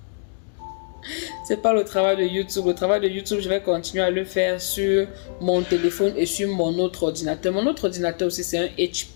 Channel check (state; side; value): silent; right; digital silence